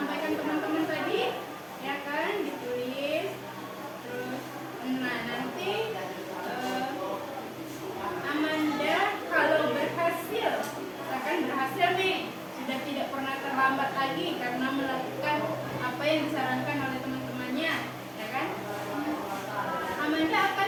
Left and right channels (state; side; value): identical; both; correlation 1.00